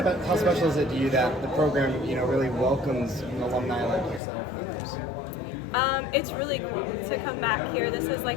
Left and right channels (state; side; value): drops out; right; at 4.2 s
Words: How special is it to you that the program, really welcomes an alumni like yourself and others? It's really cool to come back here. This is